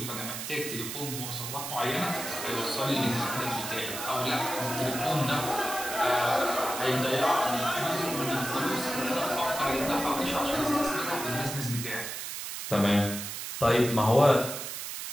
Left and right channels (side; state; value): right; noise; hiss, 6 dB below the sound